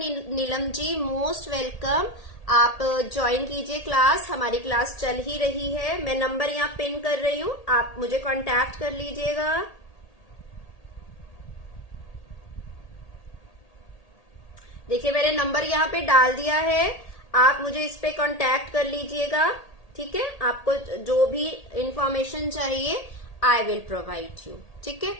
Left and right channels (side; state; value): right; late; 1.8 ms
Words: ji, most welcome. आप ज्वाइन कीजिए क्लास, हमारी क्लास चल ही रही है। मैं नंबर यहाँ पिन कर रही हूँ, आप मुझे कांटेक्ट कर लीजिएगा। देखिए मैंने नंबर यहाँ पे डाल दिया है, आप मुझे इस पे कांटेक्ट कर लीजिएगा। ठीक है, आपको जो भी इंफॉर्मेशन चाहिए आई विल प्रोवाइड यू। ठीक है,